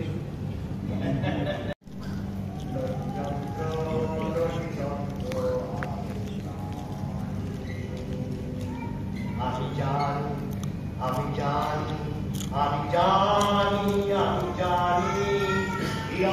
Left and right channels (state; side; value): identical; both; correlation 1.00